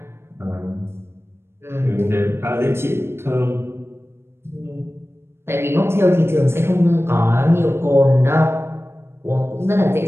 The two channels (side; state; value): left; late; 0.12 ms